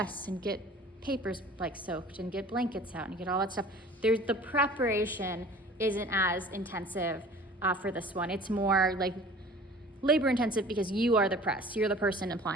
and get papers like soaked and get blankets out and get all that stuff, the preparation isn't as intensive for this one. It's more like labor intensive because you are the press, you're the person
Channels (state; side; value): normal; both; correlation 0.45